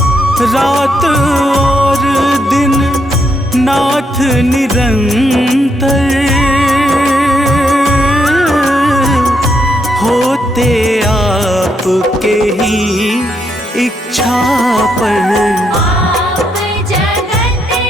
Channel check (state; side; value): normal; both; correlation 0.77